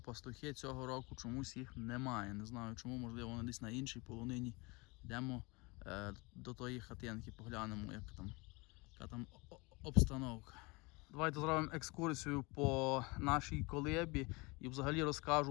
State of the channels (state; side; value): quieter; right; 26.3 dB